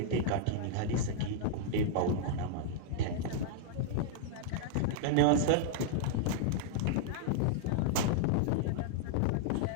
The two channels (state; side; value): different; both; correlation -0.01